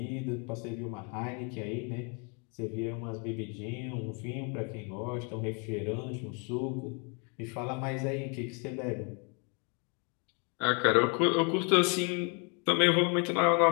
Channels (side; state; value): right; quieter; 35.3 dB